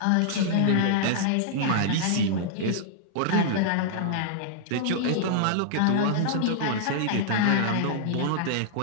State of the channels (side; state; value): both; different; correlation -0.01